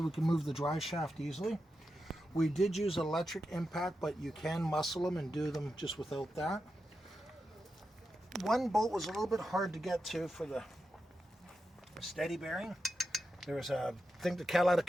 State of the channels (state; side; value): normal; both; correlation 0.88